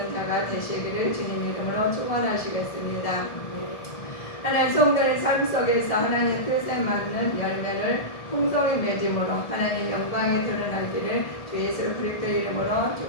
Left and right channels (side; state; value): right; late; 1.8 ms